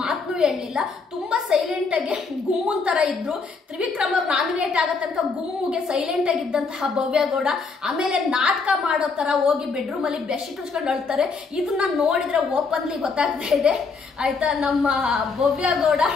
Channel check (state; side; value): quieter; right; 4.6 dB